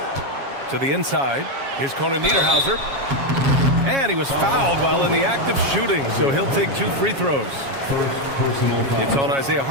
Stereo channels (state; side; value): late; left; 7.3 ms